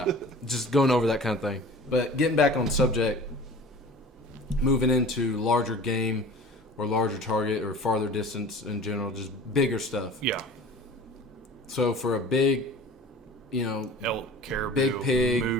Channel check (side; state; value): both; normal; correlation 0.41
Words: just going over that kind of thing. But getting back on subject, moving into larger game or larger target or farther distance in general, just bigger stuff. Yeah. So for a big, Elk, caribou, Big pig.